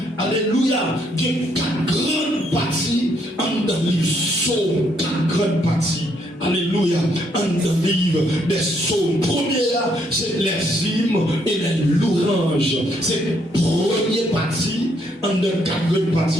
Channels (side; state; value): both; normal; correlation 0.72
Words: alléluia, il y a 4 grandes parties. Dans les psaumes, 4 grandes parties. Alléluia, en le livre des psaumes. Première, c'est les hymnes et les louanges. C'est la première partie. En de 4 parties,